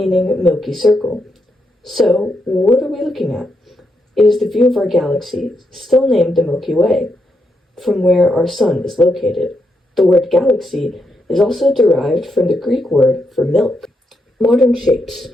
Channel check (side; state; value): both; normal; correlation 0.81